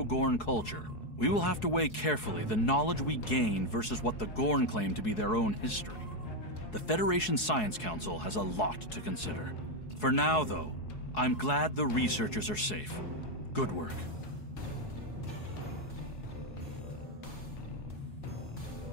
culture, we will have to weigh carefully the knowledge we gain versus what the Gorn claim to be their own history. The Federation Science Council has a lot to consider. For now, though, I'm glad the researchers are safe. Good work.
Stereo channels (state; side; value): late; right; 4.7 ms